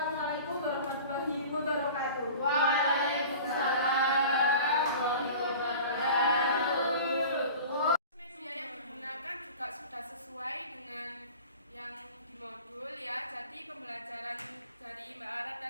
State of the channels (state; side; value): inverted; both; correlation -0.39